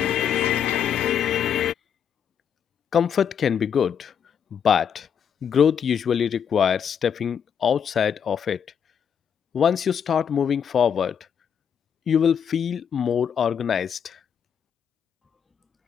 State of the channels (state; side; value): quieter; right; 7.8 dB